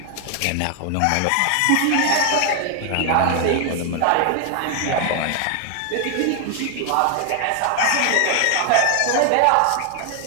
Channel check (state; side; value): different; both; correlation 0.00